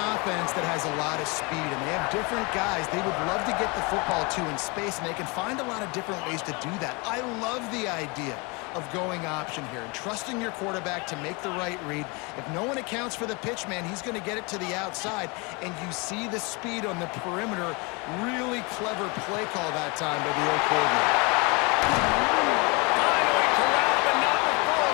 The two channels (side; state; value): right; quieter; 28.6 dB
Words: that has a lot of speed, and they have different guys they would love to get the football to in space, and they can find a lot of different ways to do that. I love the idea of going option here and trusting your quarterback to make the right read. If no one accounts for the pitch, man, he's going to get it to the outside, and you see the speed on the perimeter. Really clever play call that time by the old coordinator. Finally corralled, but not